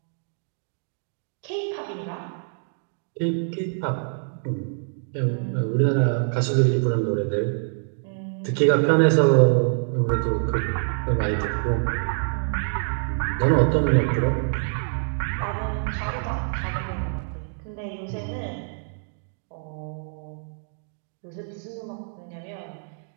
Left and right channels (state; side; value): silent; left; digital silence